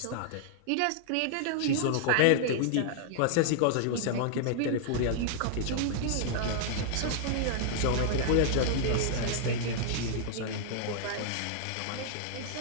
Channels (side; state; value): both; different; correlation -0.01